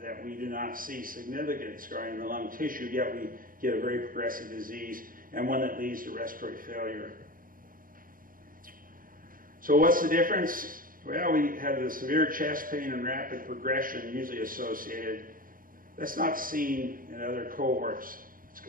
we do not see significant scarring in the lung tissue, yet we get a very progressive disease, and one that leads to respiratory failure. So what's the difference? Well, we have the severe chest pain and rapid progression usually associated. That's not seen in other cohorts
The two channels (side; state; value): left; late; 0.41 ms